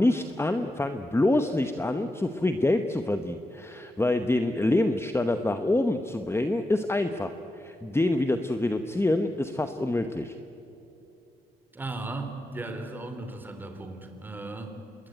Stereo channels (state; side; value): normal; both; correlation 0.89